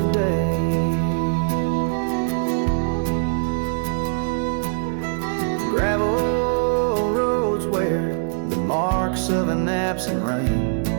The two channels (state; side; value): silent; left; digital silence